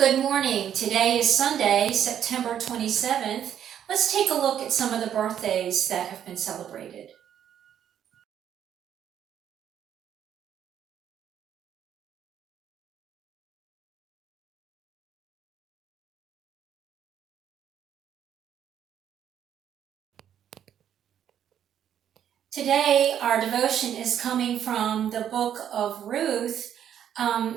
morning. Today is Sunday, September 27th. Let's take a look at some of the birthdays that have been celebrated. Today, our devotion is coming from the book of Ruth.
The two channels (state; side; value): quieter; left; 9.7 dB